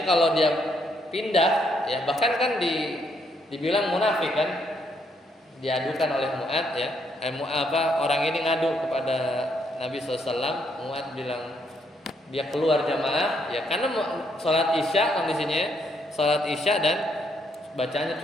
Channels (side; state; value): both; normal; correlation 0.73